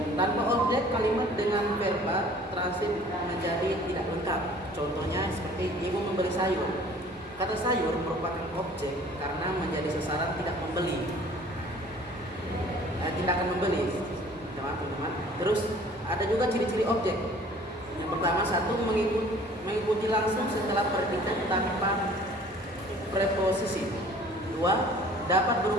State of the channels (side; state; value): both; normal; correlation 0.51